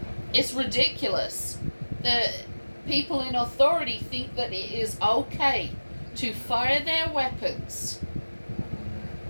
It's ridiculous that people in authority think that it is okay to fire their weapons.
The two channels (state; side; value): inverted; both; correlation -1.00